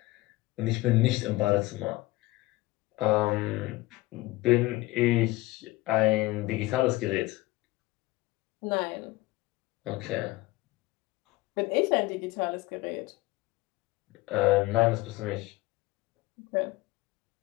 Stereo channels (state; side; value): quieter; right; 19.5 dB